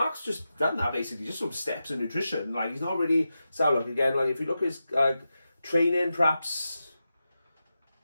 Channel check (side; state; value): both; inverted; correlation -0.91